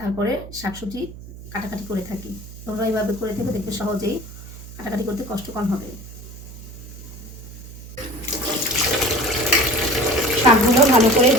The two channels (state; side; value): noise; right; hum, 15 dB below the sound